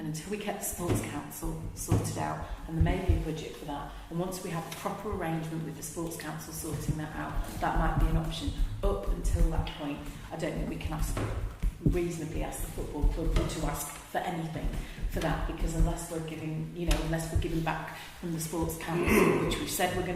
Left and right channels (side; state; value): both; identical; correlation 1.00